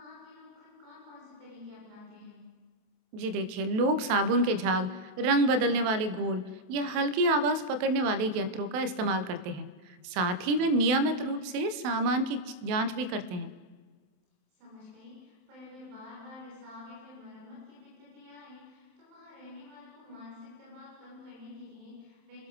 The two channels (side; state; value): left; late; 28 ms